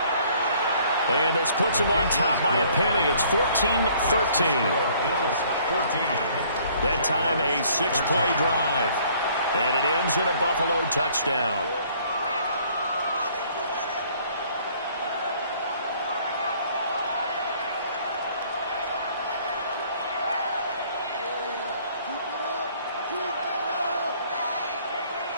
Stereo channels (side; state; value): both; inverted; correlation -0.59